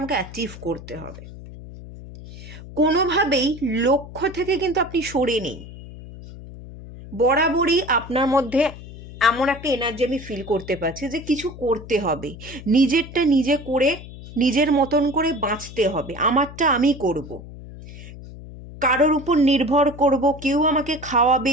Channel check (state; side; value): noise; left; hum, 15 dB below the sound